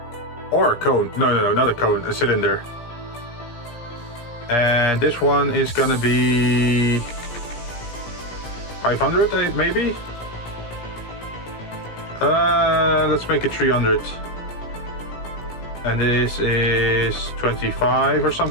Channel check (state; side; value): late; right; 17 ms